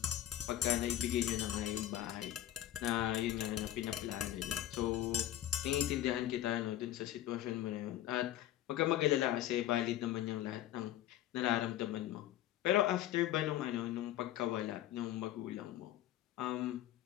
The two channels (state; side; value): quieter; right; 12.9 dB